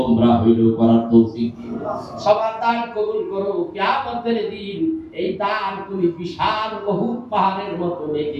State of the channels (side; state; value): both; identical; correlation 1.00